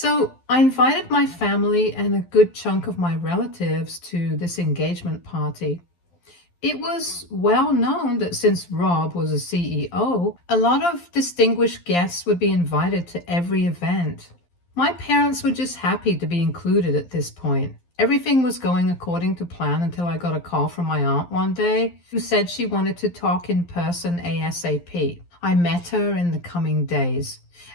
I invited my family and a good chunk of my relatives to this engagement party. It was well known that since Rob was a CEO, a lot of distinguished guests would be invited to every event. My parents were just happy to be included at this point. Everything was going according to plan until I got a call from my aunt one day who said she wanted to talk in person ASAP. I met her in the coming days,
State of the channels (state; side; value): late; right; 12 ms